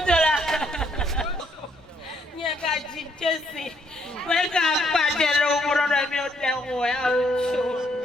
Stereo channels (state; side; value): normal; both; correlation 0.71